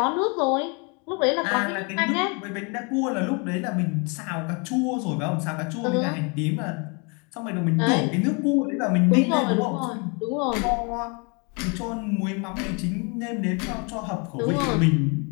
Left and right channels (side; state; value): right; quieter; 33.1 dB